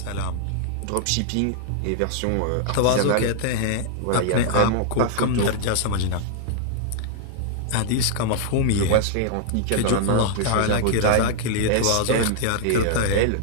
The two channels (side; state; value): both; different; correlation -0.01